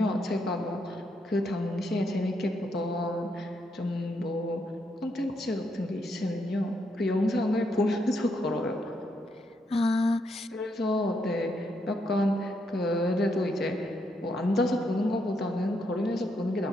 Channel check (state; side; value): normal; both; correlation 0.78